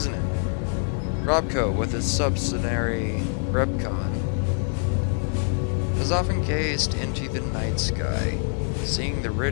it? Robco, with its subsidiary Repconn, has often gazed into the night sky, seeing the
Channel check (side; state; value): right; silent; 58 dB below the other